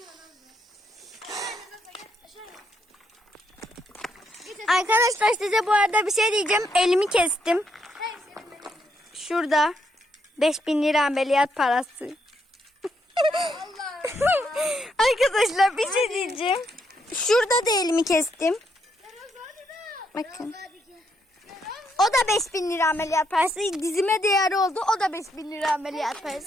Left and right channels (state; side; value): normal; both; correlation 0.76